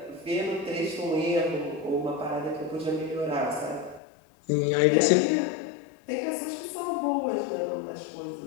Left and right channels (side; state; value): right; drops out; at 4.0 s